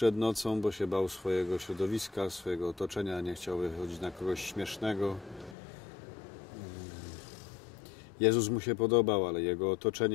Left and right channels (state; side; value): drops out; right; at 5.6 s